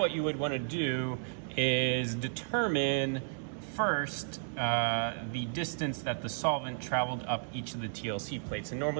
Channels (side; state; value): left; silent; digital silence